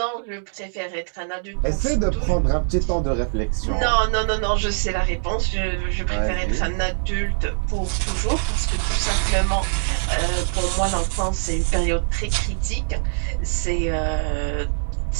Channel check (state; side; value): silent; left; digital silence